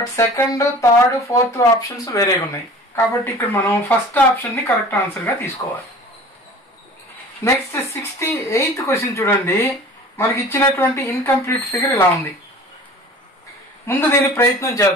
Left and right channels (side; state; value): both; normal; correlation 0.43